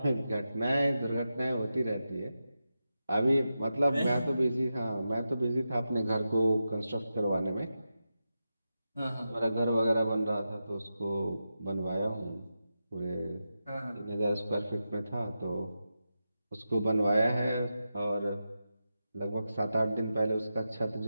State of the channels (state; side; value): inverted; both; correlation -0.90